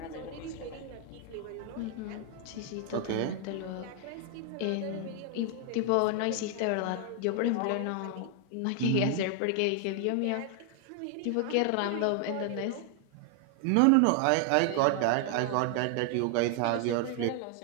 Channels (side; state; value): both; different; correlation 0.00